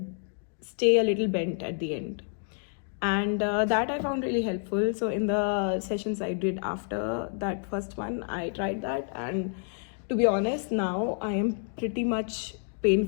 stay a little bent at the end, and that I found really helpful. So in the sessions I did after that first one, I tried that, and to be honest, now I am pretty much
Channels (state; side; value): silent; right; 59 dB below the other